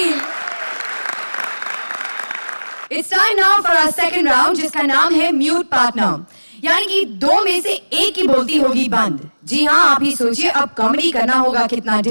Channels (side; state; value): both; inverted; correlation -1.00